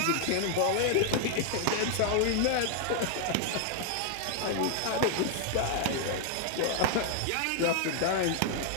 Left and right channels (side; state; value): both; different; correlation 0.00